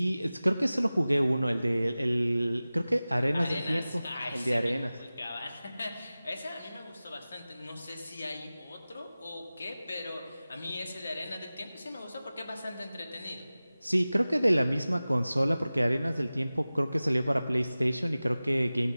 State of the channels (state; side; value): inverted; both; correlation -0.97